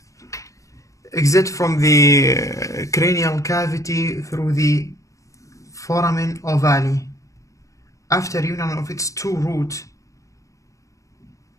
exits from the cranial cavity through the foramen ovale. After union of its two roots,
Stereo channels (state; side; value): late; right; 0.16 ms